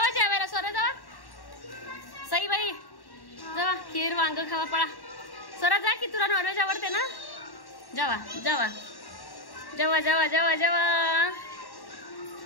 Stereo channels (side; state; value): right; late; 1.1 ms